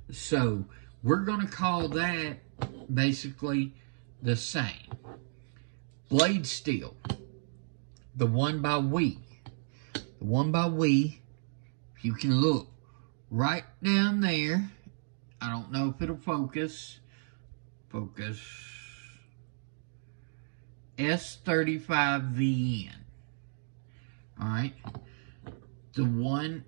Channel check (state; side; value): silent; left; digital silence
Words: So, we're going to call that basically the same. Blade steel. The one by We. The one by We, if you can look right down there, I don't know if it'll focus. Focus. S35VN. Alright. The one